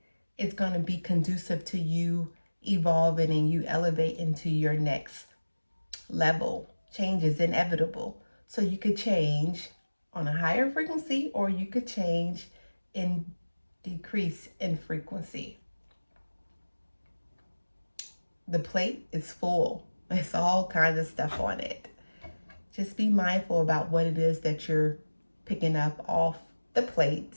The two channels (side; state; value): both; inverted; correlation -1.00